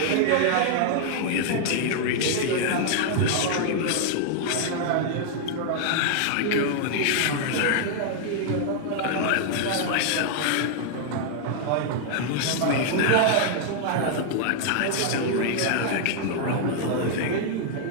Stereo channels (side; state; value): both; different; correlation 0.00